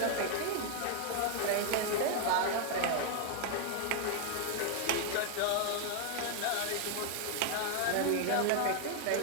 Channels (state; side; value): different; both; correlation 0.00